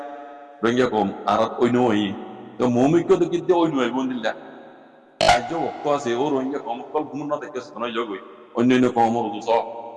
রোহিঙ্গা কম আর অন্য হই তো মৌমিক তো কিন্তু অন্য হইব দিল্লা আজ অক্ত আছে ও রোহিঙ্গা কম কল ঘুম না দেখে শোনাই যোগ অন্য অন্য কম স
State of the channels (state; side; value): identical; both; correlation 1.00